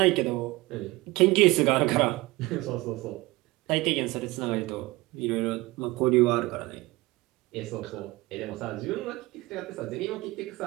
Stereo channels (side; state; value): left; quieter; 21.2 dB